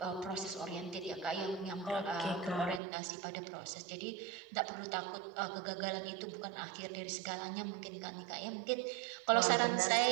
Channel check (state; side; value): drops out; left; at 2.8 s